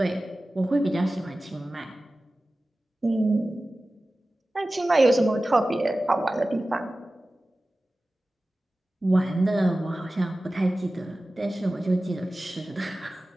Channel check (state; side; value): normal; both; correlation 0.96